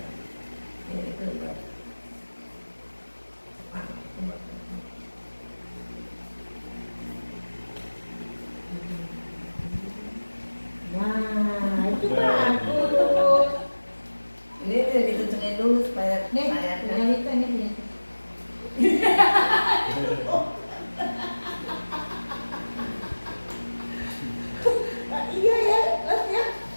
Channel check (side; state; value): both; inverted; correlation -1.00